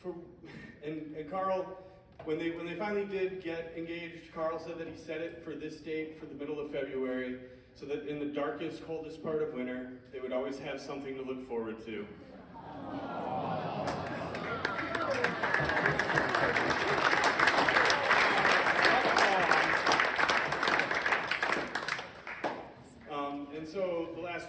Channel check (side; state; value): both; identical; correlation 1.00